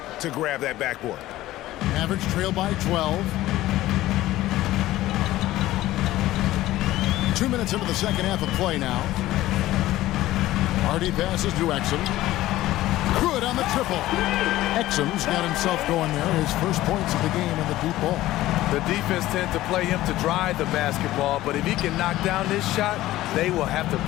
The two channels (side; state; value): right; quieter; 15.7 dB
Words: to grab that backboard. Mavericks trail by 12. 2 minutes into the second half of play now. Hardy passes to Exum. Good on the triple. Exum's got himself going there. His first points of the game in the deep ball. The defense tends to play him to drive the basketball, but if he can knock down this shot, they will have to